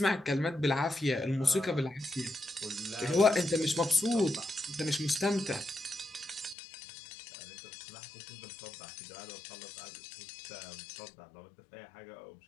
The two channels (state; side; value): drops out; right; at 6.6 s